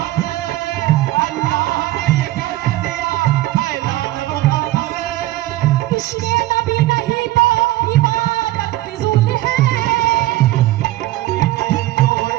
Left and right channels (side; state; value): left; quieter; 16.3 dB